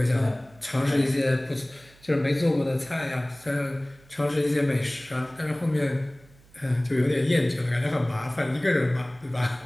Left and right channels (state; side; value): noise; right; hum, 27 dB below the sound